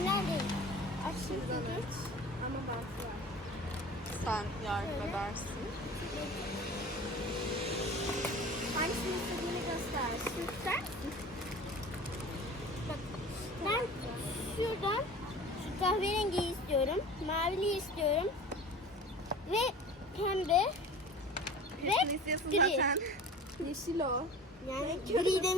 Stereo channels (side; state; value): both; normal; correlation 0.39